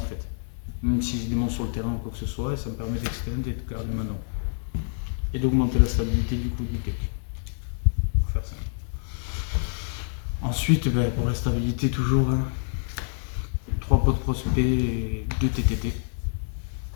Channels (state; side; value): silent; right; 60 dB below the other